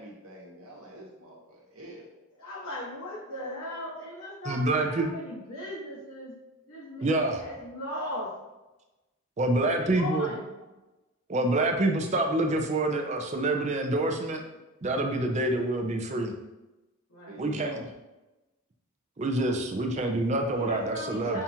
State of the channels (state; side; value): normal; both; correlation 0.33